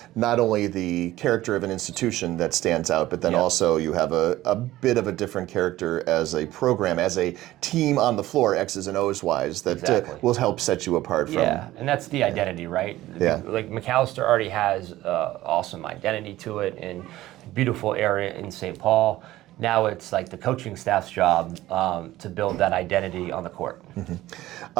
not only the character of an institution that stands out, but then also you have a bit of a different character as a program, as a team on the floor, X's and O's wise, that will help set you apart from. Yeah, and that's the identity, right? Yeah. Macalester already has awesome identity to it, and beautiful area in St. Paul. Now it's the coaching staff's job to build that identity on the court.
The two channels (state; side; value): quieter; left; 15.8 dB